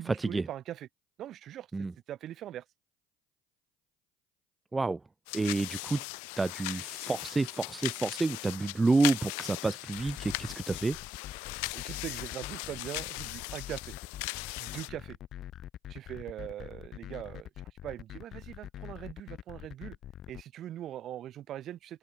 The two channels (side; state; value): both; normal; correlation 0.79